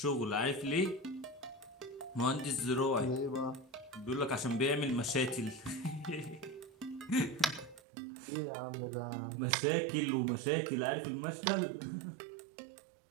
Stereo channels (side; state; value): left; drops out; at 7.8 s